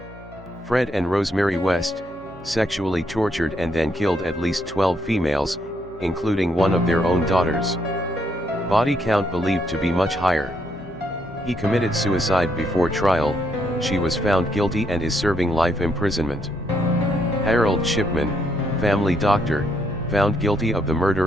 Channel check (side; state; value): both; normal; correlation 0.75